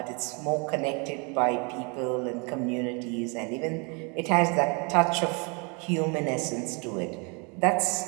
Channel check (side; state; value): left; quieter; 32.7 dB